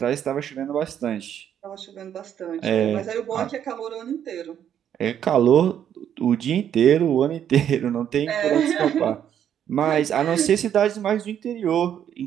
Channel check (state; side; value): quieter; left; 9.6 dB